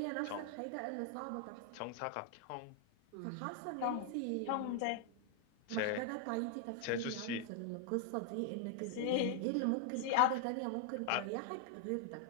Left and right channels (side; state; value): both; different; correlation 0.00